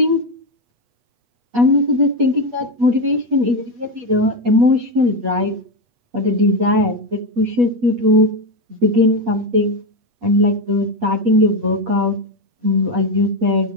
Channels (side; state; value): left; late; 8.3 ms